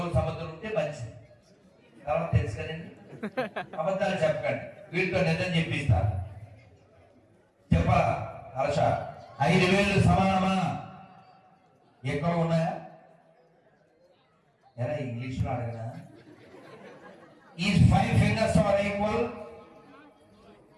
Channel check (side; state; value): both; identical; correlation 1.00